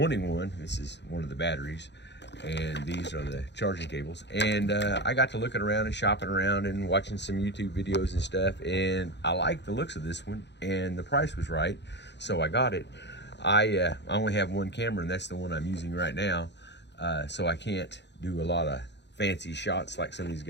one. This is one of the batteries, and these are the charging cables. And I got to looking around and shopping around and watching some YouTube videos and stuff, and I like the looks of this one, and the price was right, so I got it. I only have one camera, and that's the one I'm using right now, so I can't do a lot of fancy shots like some of these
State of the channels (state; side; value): late; right; 0.51 ms